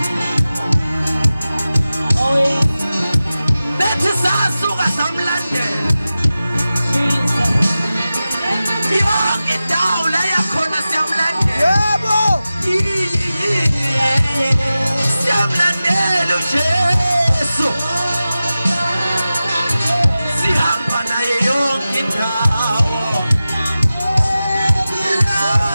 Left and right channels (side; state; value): both; inverted; correlation -0.95